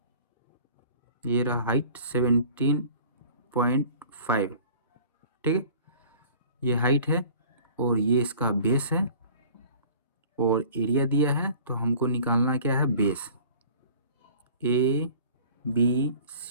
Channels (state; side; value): inverted; both; correlation -0.46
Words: ये रहा हाइट 17.5। ठीक है, ये हाइट है और ये इसका बेस है, और एरिया दिया है, तो हमको निकालना क्या है, base. A B